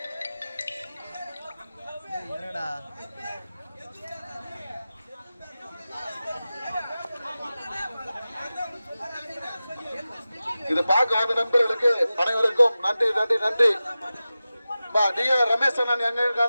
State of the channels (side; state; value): both; inverted; correlation -0.95